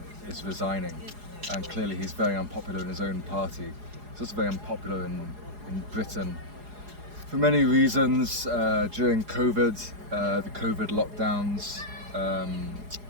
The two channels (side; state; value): left; late; 4.8 ms